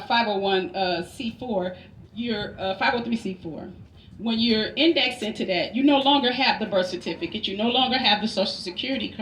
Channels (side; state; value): both; identical; correlation 1.00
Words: C4, you're 503 C4. When you're indexed into that, you no longer have the birth certificate, you no longer have the social security